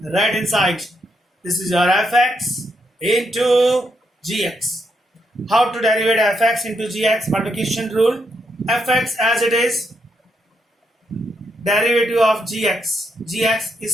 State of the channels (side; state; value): both; normal; correlation 0.79